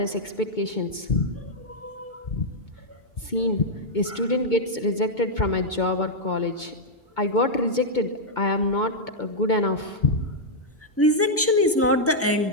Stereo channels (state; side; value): normal; both; correlation -0.05